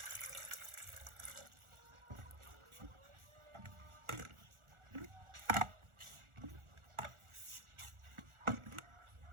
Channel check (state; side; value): late; left; 1.4 ms